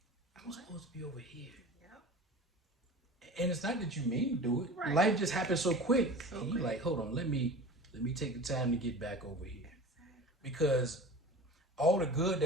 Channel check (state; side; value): normal; both; correlation 0.37